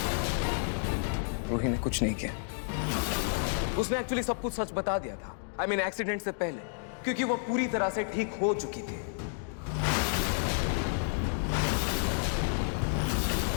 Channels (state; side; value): silent; right; digital silence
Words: रूही ने कुछ नहीं किया। उसने एक्चुअली सब कुछ सच बता दिया था। आई मीन एक्सीडेंट से पहले, क्योंकि वो पूरी तरह से ठीक हो चुकी थी।